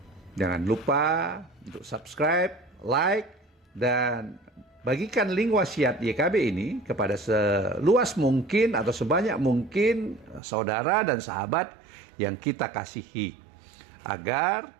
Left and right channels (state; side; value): drops out; left; at 10.4 s